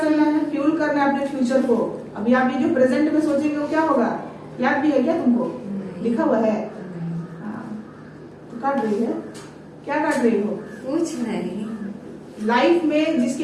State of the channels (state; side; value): identical; both; correlation 1.00